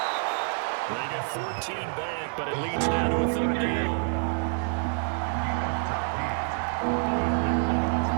They get 14 back, but it leads now to a third down.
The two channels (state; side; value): silent; left; 57 dB below the other